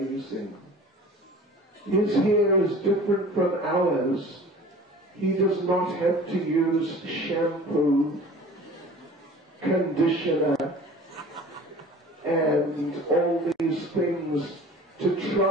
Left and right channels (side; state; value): both; normal; correlation 0.43